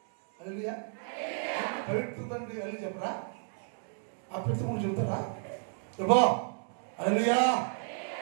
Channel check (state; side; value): silent; left; 56 dB below the other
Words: హల్లెలూయా. పవిత్రత అంటే వెళ్ళి చెప్పరా? అపవిత్రము చెబుతారా? చెప్పా హల్లెలూయా,